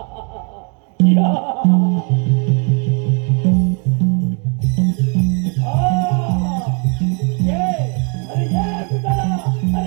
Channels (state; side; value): quieter; left; 37.4 dB